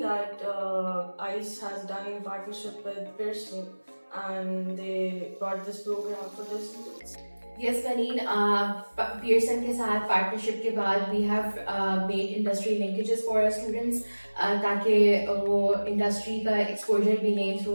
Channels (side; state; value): both; inverted; correlation -1.00